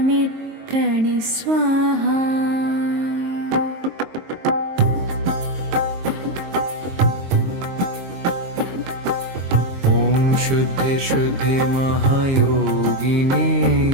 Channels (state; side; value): late; left; 22 ms